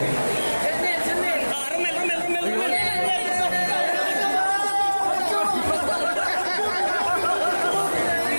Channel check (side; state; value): both; inverted; correlation -1.00